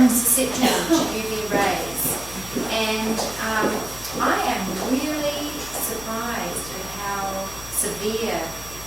susceptible to UV rays. And I am really surprised at how severe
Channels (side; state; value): left; noise; hum, 15 dB below the sound